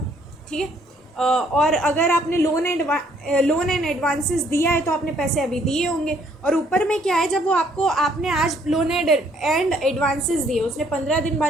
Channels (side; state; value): both; normal; correlation 0.65